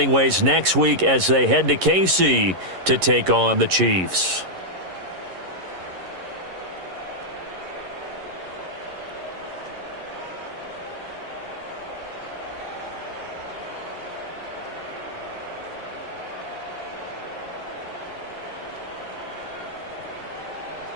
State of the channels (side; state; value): left; late; 11 ms